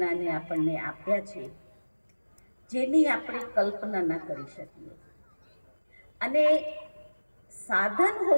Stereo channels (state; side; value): inverted; both; correlation -1.00